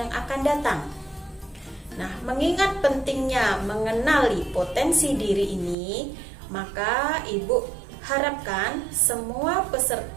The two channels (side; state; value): left; drops out; at 5.8 s